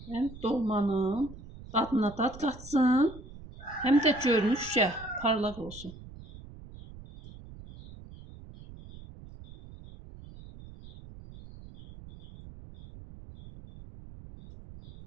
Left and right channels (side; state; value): right; noise; rumble, 17 dB below the sound